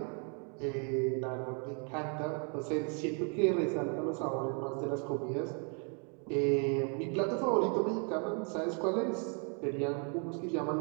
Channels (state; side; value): quieter; left; 39.2 dB